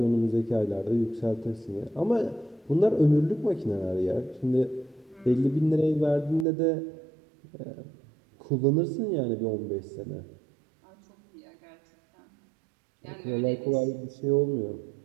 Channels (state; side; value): drops out; left; at 6.5 s